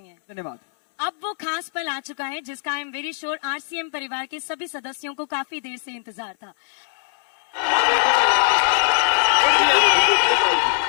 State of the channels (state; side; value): silent; right; 64 dB below the other